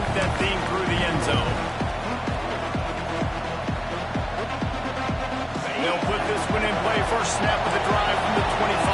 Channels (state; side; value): identical; both; correlation 1.00